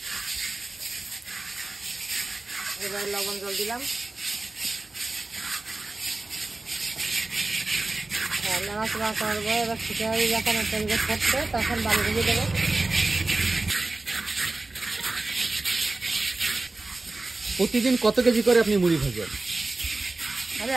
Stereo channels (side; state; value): left; quieter; 3.2 dB